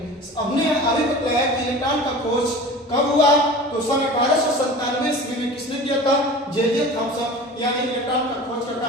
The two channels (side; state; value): both; normal; correlation 0.37